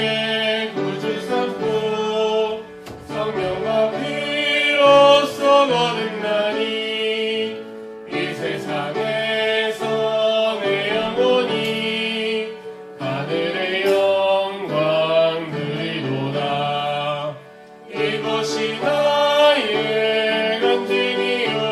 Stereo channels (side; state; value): both; identical; correlation 1.00